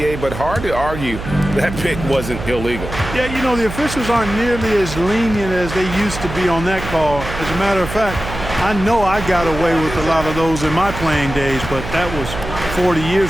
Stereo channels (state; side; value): noise; right; hum, 9 dB below the sound